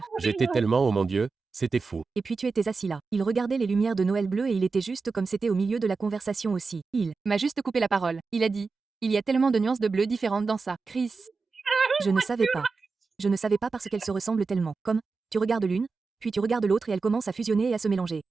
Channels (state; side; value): quieter; left; 4.4 dB